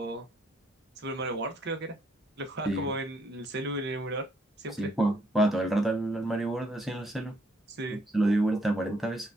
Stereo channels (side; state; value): both; normal; correlation 0.69